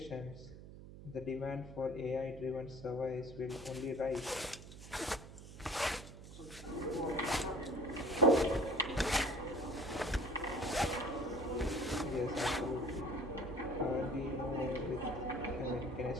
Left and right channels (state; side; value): noise; right; hum, 14 dB below the sound